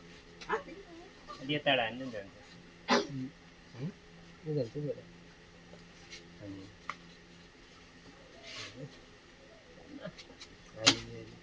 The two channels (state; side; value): identical; both; correlation 1.00